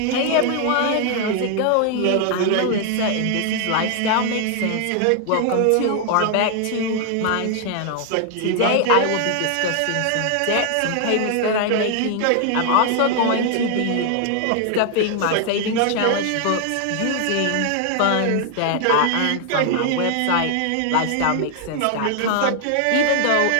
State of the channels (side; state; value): both; different; correlation 0.00